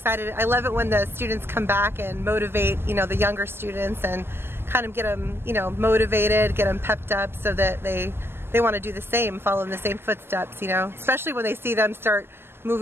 I love it when the students come back and motivate, the younger students and kind of get them, motivated, get them pepped up so that they want to do the same, follow in the same footsteps, especially when they see them start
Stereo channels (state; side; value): late; left; 0.12 ms